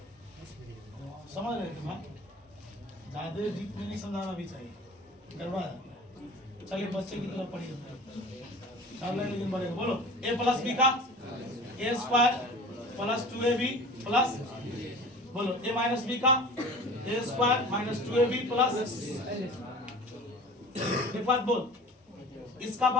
समझ रहे ज्यादा डीप में नहीं समझाना भी चाहिए करवा चलिए बच्चे की तरफ पढ़िए लेकिन बढ़ेगा। बोलो ए प्लस बी का ए स्क्वायर प्लस 2ab प्लस बोलो ए माइनस बी का ए स्क्वायर माइनस 2ab प्लस एक बात बोल इसका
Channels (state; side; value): normal; both; correlation 0.40